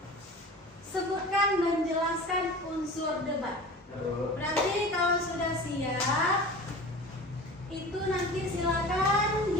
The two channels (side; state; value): both; normal; correlation 0.37